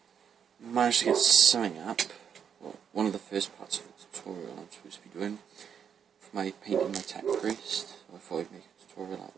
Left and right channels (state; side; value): quieter; left; 7.7 dB